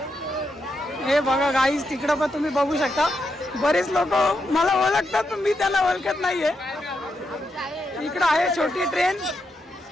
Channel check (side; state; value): both; normal; correlation 0.83